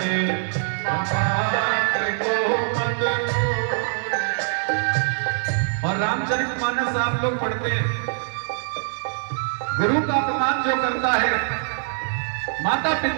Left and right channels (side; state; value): left; silent; 63 dB below the other